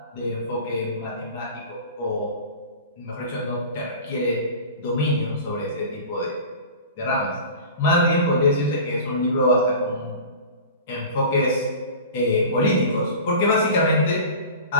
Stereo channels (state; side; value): inverted; both; correlation -0.36